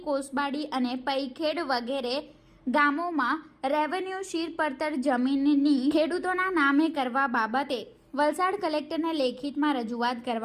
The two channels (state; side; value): identical; both; correlation 1.00